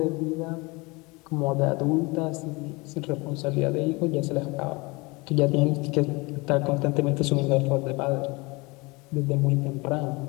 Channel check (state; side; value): quieter; right; 25.7 dB